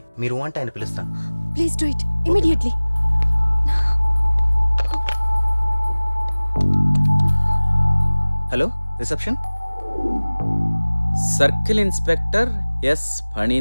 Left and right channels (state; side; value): inverted; both; correlation -1.00